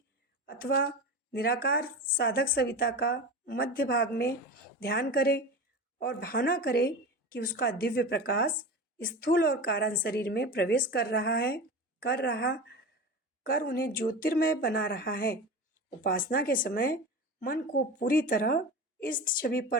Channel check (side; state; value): both; normal; correlation 0.29